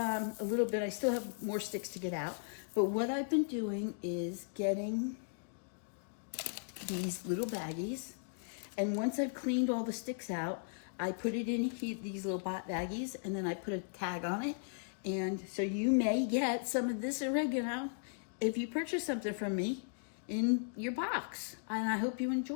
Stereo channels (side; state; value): right; silent; digital silence